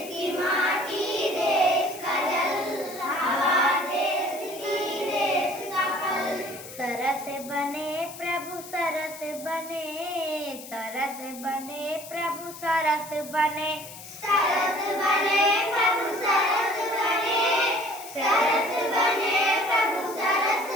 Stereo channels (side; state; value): left; noise; hiss, 14 dB below the sound